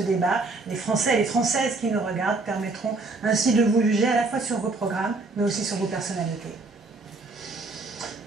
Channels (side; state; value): left; quieter; 3.5 dB